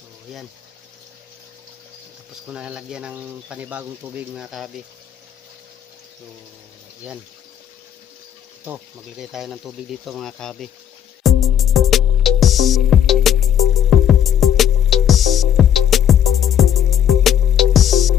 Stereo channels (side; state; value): right; quieter; 9.5 dB